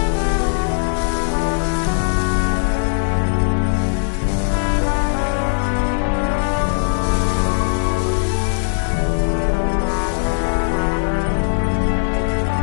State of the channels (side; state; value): right; silent; 67 dB below the other